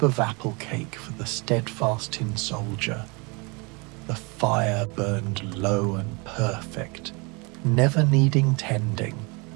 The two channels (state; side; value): quieter; left; 29.3 dB